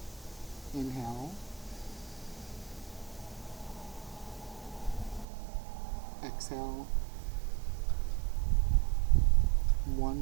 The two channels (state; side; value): drops out; left; at 5.2 s